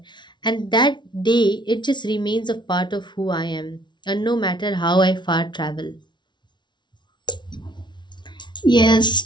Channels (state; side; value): late; right; 0.22 ms